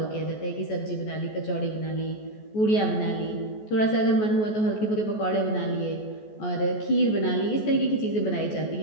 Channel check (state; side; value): late; right; 14 ms